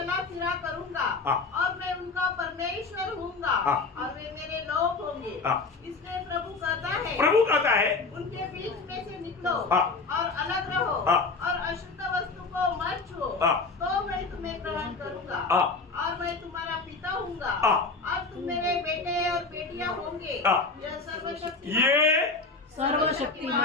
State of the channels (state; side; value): quieter; right; 4.0 dB